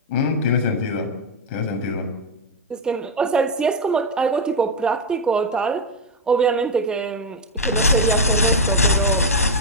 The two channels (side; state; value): both; normal; correlation 0.01